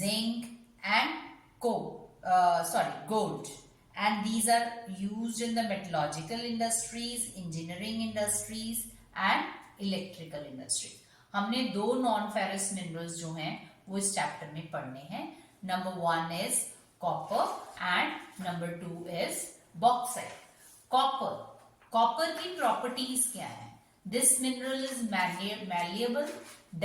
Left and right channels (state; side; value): identical; both; correlation 1.00